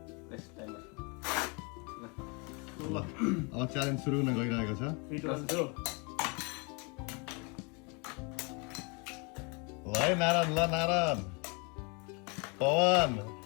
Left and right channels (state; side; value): quieter; right; 32.1 dB